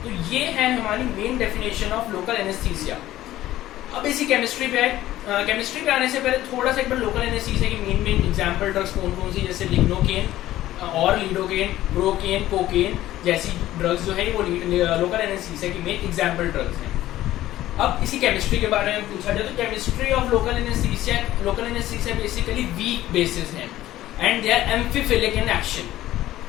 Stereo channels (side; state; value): right; quieter; 14.6 dB